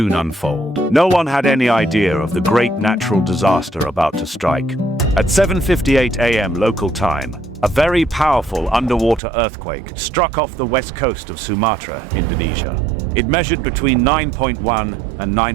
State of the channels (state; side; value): drops out; left; at 9.2 s